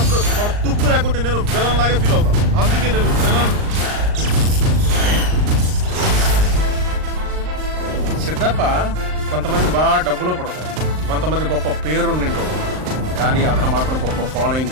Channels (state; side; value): late; left; 39 ms